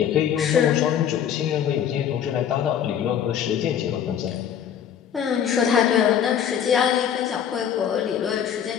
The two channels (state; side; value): quieter; right; 9.0 dB